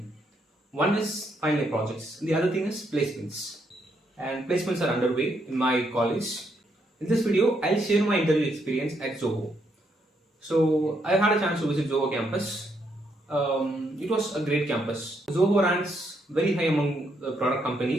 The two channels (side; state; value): both; normal; correlation 0.76